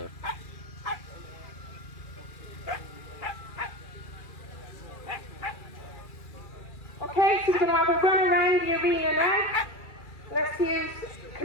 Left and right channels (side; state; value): right; late; 2.3 ms